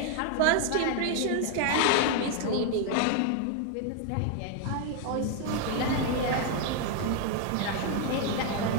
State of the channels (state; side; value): different; both; correlation 0.00